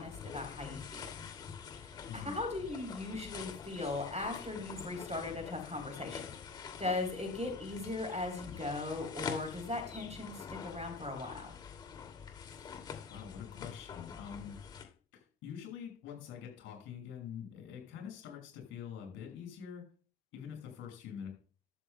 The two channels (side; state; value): right; quieter; 3.5 dB